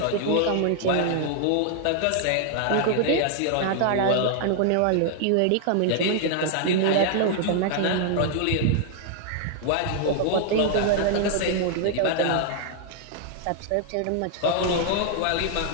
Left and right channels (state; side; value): different; both; correlation -0.01